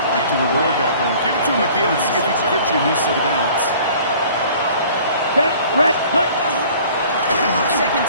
like to reward that run. Give it to him again and see if he can get you a new set of downs. Set, red, cut. Second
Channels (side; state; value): both; inverted; correlation -0.50